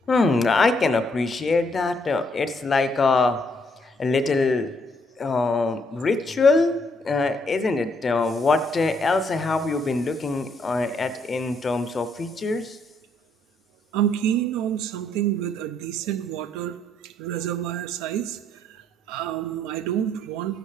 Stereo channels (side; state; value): both; normal; correlation 0.71